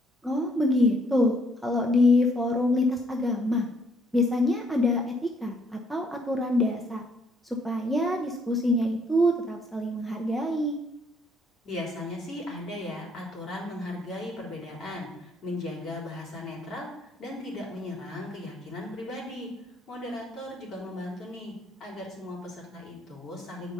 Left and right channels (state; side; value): normal; both; correlation 0.67